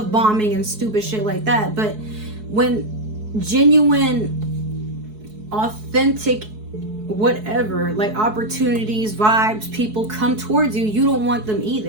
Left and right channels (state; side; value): late; left; 4.7 ms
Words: bombing and stupid shit like that. But when genuine, authentic, whatever, like opportunities, vibes, people come towards you, you don't want them